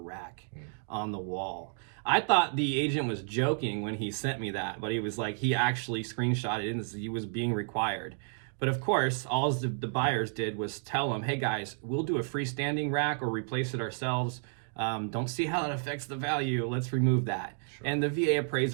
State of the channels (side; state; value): left; silent; 57 dB below the other